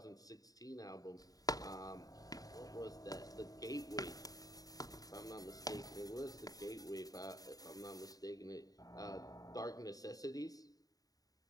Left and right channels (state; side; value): late; right; 0.18 ms